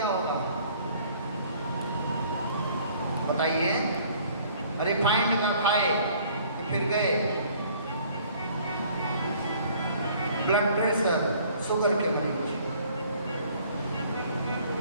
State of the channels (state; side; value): inverted; both; correlation -0.56